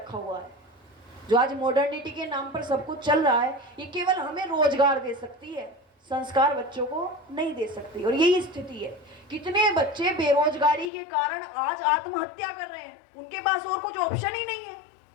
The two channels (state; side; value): drops out; right; at 10.9 s